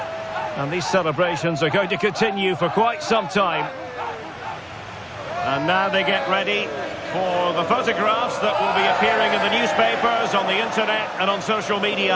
And these celebrations are going to continue for quite some time. And now they get ready for the photographs that will be appearing in the newspapers, on the internet and on social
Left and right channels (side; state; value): both; identical; correlation 1.00